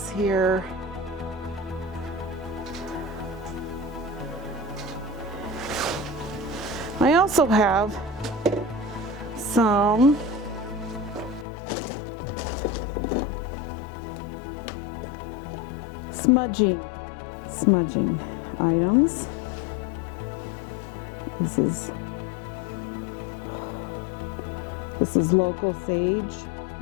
here. I also have some Smudging items. This is local sage.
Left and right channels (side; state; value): right; drops out; at 11.5 s